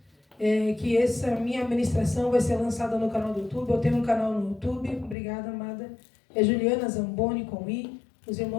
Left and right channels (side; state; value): right; drops out; at 5.2 s